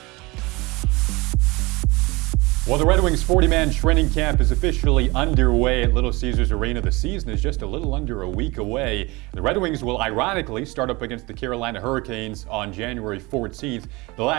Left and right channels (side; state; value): left; quieter; 23.7 dB